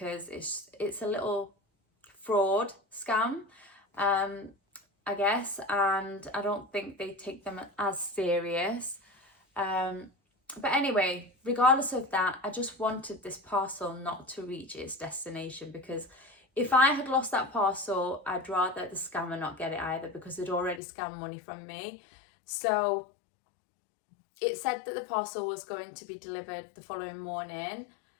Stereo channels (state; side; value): drops out; right; at 20.8 s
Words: it's a little fraud scam, I guess, and I don't think they take them as serious. But anyway, regardless of that, I just wanted this parcel not to reach its destination, because if I had lost that parcel, I'd rather the scammer not get it either, because they'd already scammed money from me. So it said that the parcel was going to be delivered the following morning.